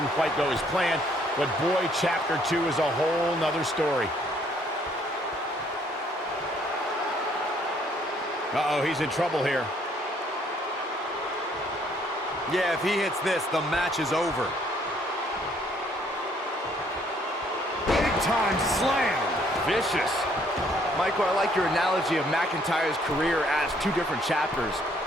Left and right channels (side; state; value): both; normal; correlation 0.65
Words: quite go as planned, but boy, chapter 2 is a whole nother story. Uh-oh, he's in trouble here. Yeah, if he hits this, the match is over. Big time slam. Vicious. Michael, I like your analogy of McIntyre's career as two different chapters.